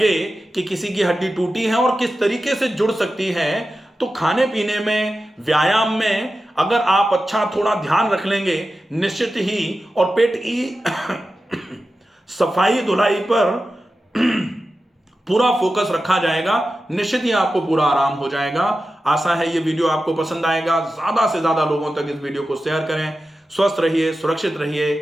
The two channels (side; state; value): both; normal; correlation 0.93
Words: कि किसी की हड्डी टूटी है और किस तरीके से जुड़ सकती है, तो खाने पीने में, व्यायाम में अगर आप अच्छा थोड़ा ध्यान रख लेंगे निश्चित ही, और पेट की सफाई धुलाई पर पूरा फोकस रखा जाएगा, निश्चित ही आपको पूरा आराम हो जाएगा। आशा है ये वीडियो आपको पसंद आएगा। ज्यादा से ज्यादा लोगों तक इस वीडियो को शेयर करें। स्वस्थ रहिए, सुरक्षित रहिए।